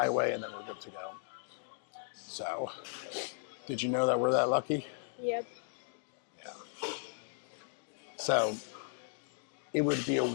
and then we're good to go. So, did you know that we're that lucky? Yep. Yeah. So, it would be a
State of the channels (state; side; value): silent; right; digital silence